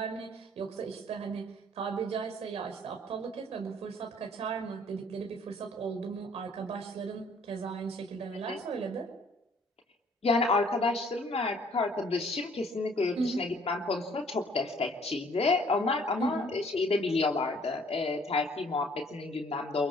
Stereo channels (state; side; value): normal; both; correlation 0.59